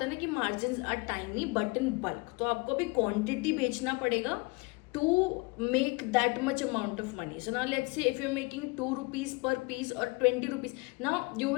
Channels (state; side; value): quieter; right; 27.2 dB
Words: है ना कि margins are tiny but in bulk, तो आपको भी quantity बेचना पड़ेगा to make that much amount of money. So now let's say if you're making 2 rupees per piece or 20 rupees, now you